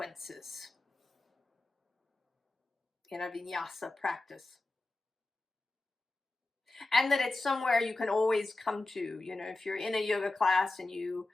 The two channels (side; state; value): right; quieter; 3.0 dB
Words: in a vinyasa practice. And that it's somewhere you can always come to. If you're in a yoga class and you're